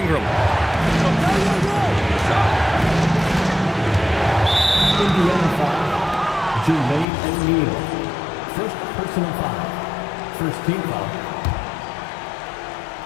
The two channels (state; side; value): drops out; right; at 7.1 s